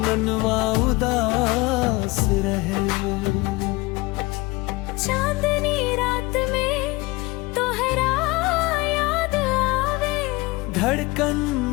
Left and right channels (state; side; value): quieter; right; 22.9 dB